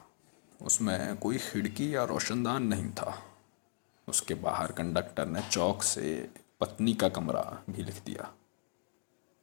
उसमें कोई खिड़की या रोशनदान नहीं था। उसके बाहर कंडक्टर ने चौक से पत्नी का कमरा भी लिख दिया।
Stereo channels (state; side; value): silent; right; digital silence